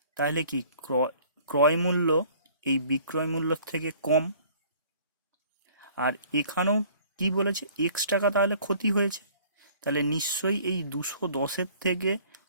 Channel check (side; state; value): both; inverted; correlation -0.53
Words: তাহলে কি ক্রয় মূল্য এই বিক্রয় মূল্যর থেকে কম, আর এখানেও কি বলেছে? এক্স টাকা তাহলে ক্ষতি হয়েছে, তাহলে নিশ্চয়ই এই 210-এর থেকে